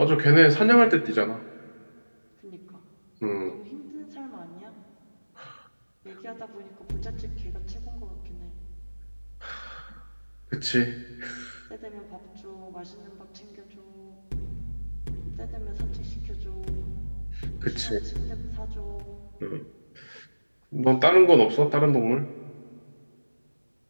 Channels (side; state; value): both; inverted; correlation -1.00